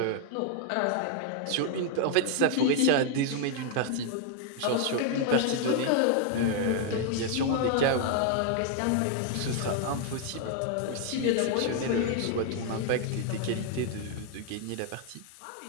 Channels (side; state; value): both; different; correlation 0.00